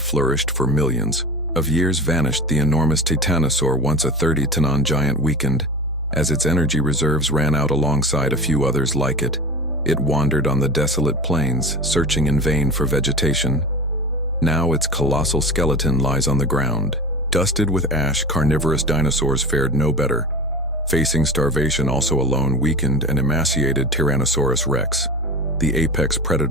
for millions of years vanished. The enormous titanosaur, once a 30-ton giant, weakened as its energy reserves ran out alongside a few others like it. It wandered on the desolate plains, searching in vain for vegetation. Now its colossal skeleton lies on the ground. Dusted with ash, carnivorous dinosaurs fared no better. Facing starvation, also alone, weakened and emaciated Tyrannosaurus rex, the apex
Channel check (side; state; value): both; normal; correlation 0.32